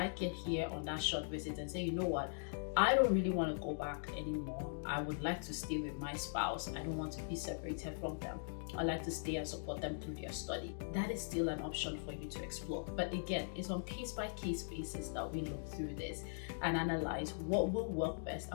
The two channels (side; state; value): right; silent; digital silence